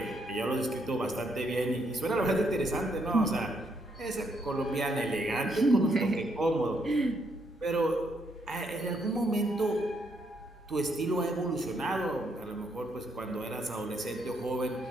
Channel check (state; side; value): normal; both; correlation 0.74